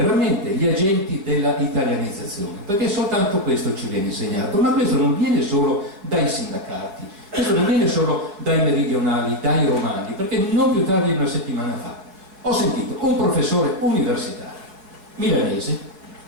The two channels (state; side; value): late; left; 4.7 ms